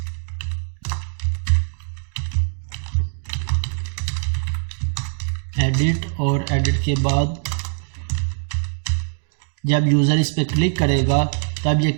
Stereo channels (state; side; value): silent; left; 61 dB below the other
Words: एडिट, और एडिट के बाद जब यूज़र इस पर क्लिक करेगा तब ये